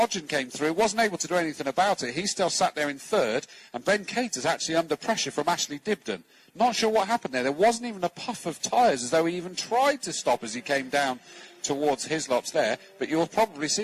came through, wasn't able to do anything about it. He still sat there in 3rd, and Ben Cater's actually under pressure from Ashley Dibden. Not sure what happened there. There wasn't even a puff of tyres, as though he even tried to stop as he came down towards Hislops there. But you'll probably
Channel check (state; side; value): identical; both; correlation 1.00